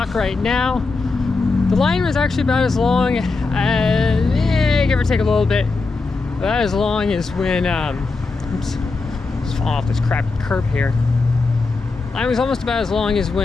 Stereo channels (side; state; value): right; quieter; 3.9 dB